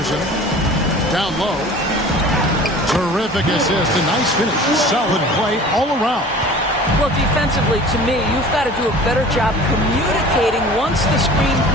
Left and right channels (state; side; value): normal; both; correlation 0.43